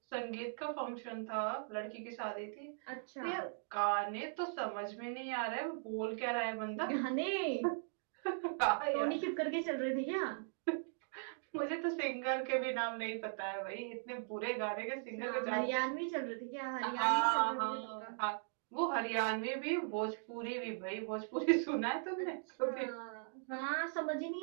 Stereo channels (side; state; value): left; silent; digital silence